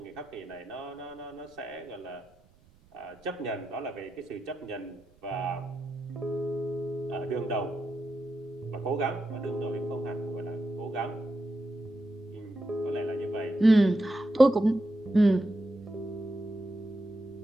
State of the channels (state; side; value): noise; right; rumble, 29 dB below the sound